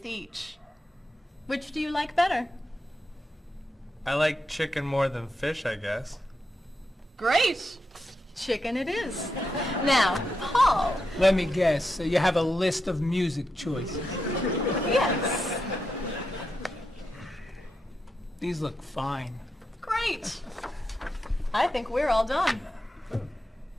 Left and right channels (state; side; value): normal; both; correlation 0.86